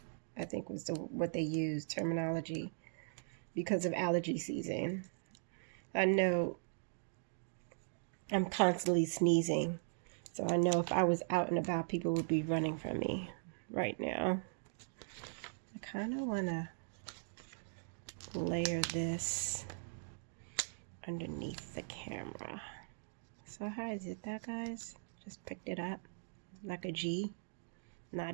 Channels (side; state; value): left; silent; digital silence